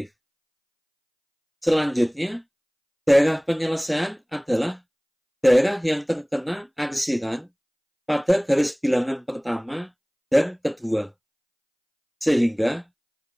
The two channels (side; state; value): both; identical; correlation 1.00